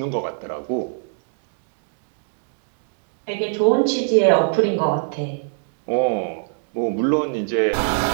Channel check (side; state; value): left; silent; digital silence